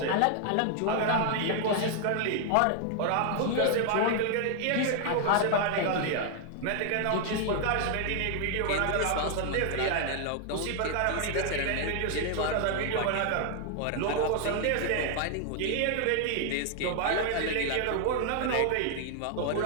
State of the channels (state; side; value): different; both; correlation 0.00